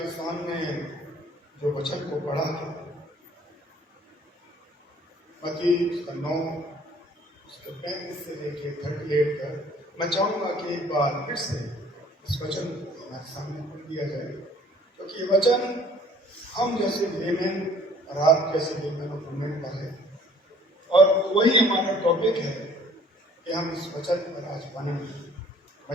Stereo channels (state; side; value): normal; both; correlation 0.55